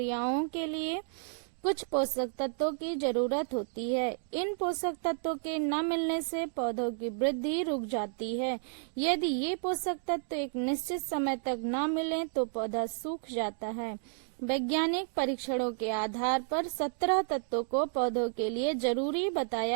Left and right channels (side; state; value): left; silent; digital silence